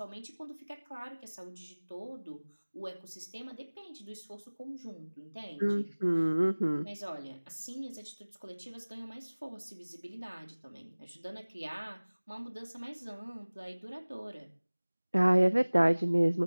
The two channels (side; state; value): both; inverted; correlation -1.00